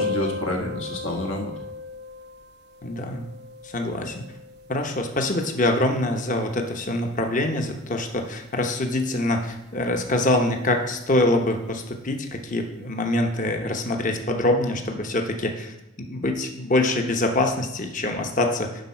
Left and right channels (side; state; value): both; normal; correlation 0.36